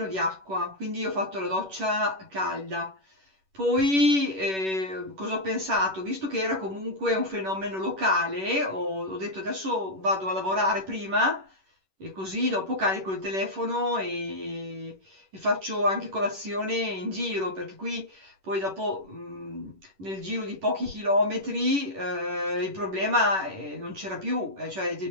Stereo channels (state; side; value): late; left; 11 ms